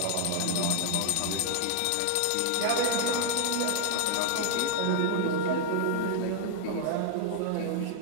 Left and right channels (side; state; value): both; different; correlation 0.00